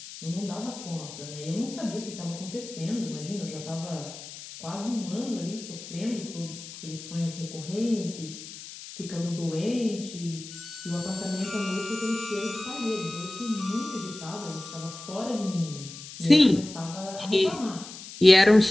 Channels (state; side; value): noise; left; hiss, 13 dB below the sound